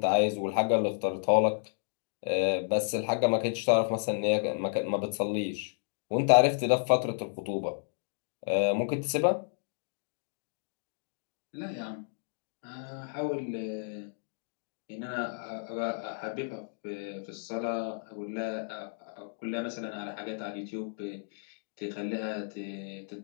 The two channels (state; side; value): silent; right; digital silence